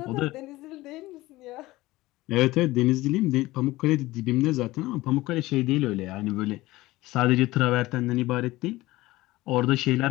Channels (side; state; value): right; quieter; 18.6 dB